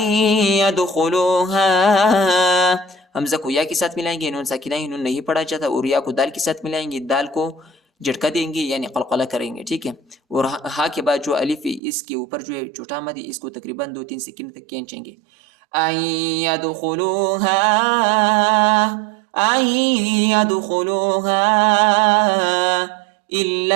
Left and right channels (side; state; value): left; drops out; at 11.8 s